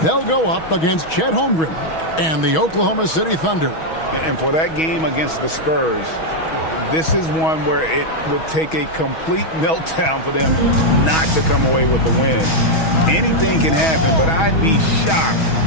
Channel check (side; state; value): right; late; 6.2 ms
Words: they'll go up against Chet Holmgren and the Oklahoma City Thunder. And for that game against the Spurs, this is one where it would take a complete meltdown for them not to come away with the win. Anything can happen, but I'd be shocked